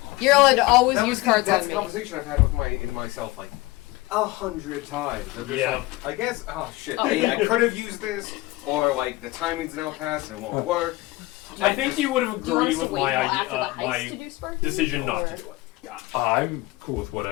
You're allowed to always That use was cards that's on the me. conversation I've had with myself like 100 times. I'm just Yeah. like, I guess. Oh shit! Oh. I could have used this, or like the timing's now passed and it won't work. I think you would have Do you want agreed us to with wait my till idea, after the heist to my do Sparky, decision not or- to do it. I'm cool with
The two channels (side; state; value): right; quieter; 20.0 dB